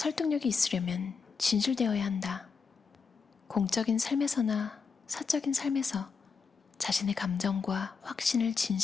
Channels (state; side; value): quieter; right; 5.3 dB